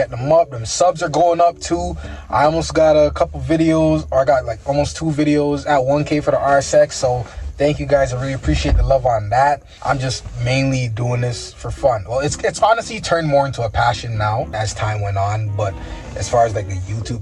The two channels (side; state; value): both; identical; correlation 1.00